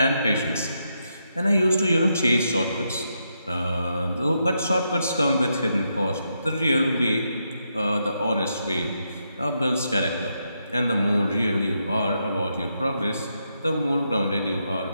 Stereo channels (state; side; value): inverted; both; correlation -0.81